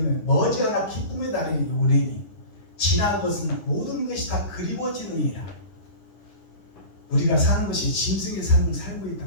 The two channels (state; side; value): late; right; 10 ms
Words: 머지않아 기쁨의 날이 오리니 지난 것은 모든 것이 다 그리워지느니라. 우리가 사는 것이 짐승의 삶을 살고 있다